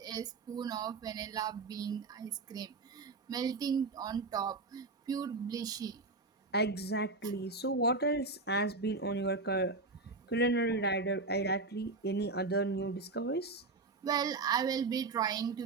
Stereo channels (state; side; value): quieter; left; 3.6 dB